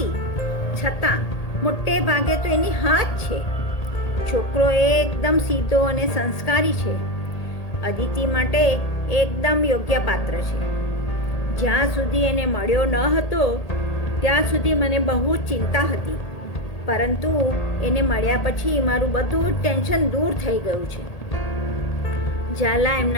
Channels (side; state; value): right; late; 1.8 ms